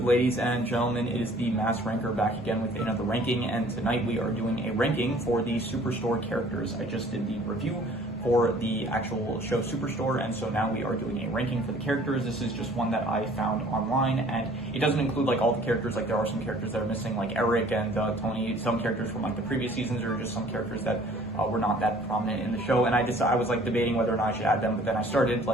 ladies and gentlemen? It is the Mass Ranker back again with another ranking, and tonight we are doing a ranking for the Superstore characters. I just did the review for the actual show Superstore, and so now we are doing a ranking for the characters. This is just one that I found online, and it doesn't include like all the characters. Like there are some characters that are missing, like Eric and Tony, some characters from like the previous seasons, or just some characters that were not that prominent in the show. And I was like debating whether or not I should add them, but then I started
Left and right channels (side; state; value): both; normal; correlation 0.53